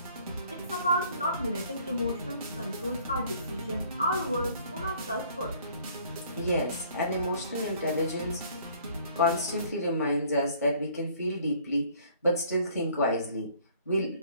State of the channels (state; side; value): inverted; both; correlation -0.58